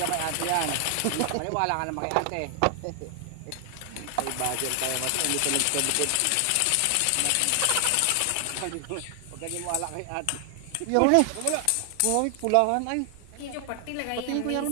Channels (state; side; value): different; both; correlation 0.00